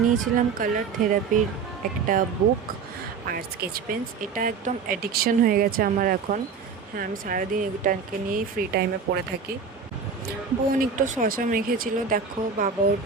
নিয়েছিলাম কালার থেরাপির একটা বুক আর স্কেচ পেন্স। এটা একদম অ্যাডিকশন হয়ে গেছে আমার এখন। হ্যাঁ, আমি সারাদিন এটাকে নিয়েই ফ্রি টাইমে পড়ে থাকি। বোন একটু শশা মেখেছিল, দেখো বাবা ওর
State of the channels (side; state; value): left; quieter; 5.7 dB